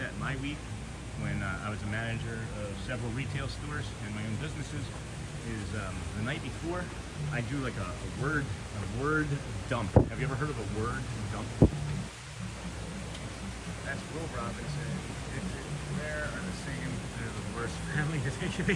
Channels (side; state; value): both; identical; correlation 1.00